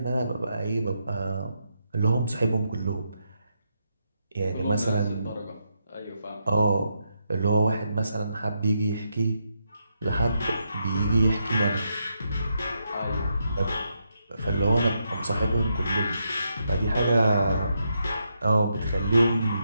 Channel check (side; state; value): both; inverted; correlation -0.81